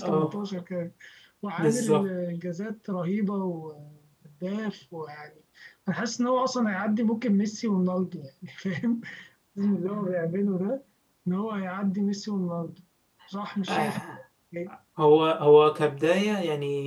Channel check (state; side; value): identical; both; correlation 1.00